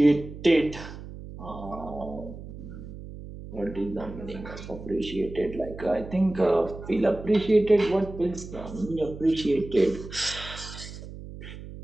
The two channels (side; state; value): right; noise; hum, 13 dB below the sound